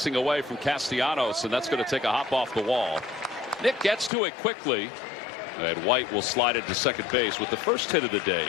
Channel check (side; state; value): right; drops out; at 4.1 s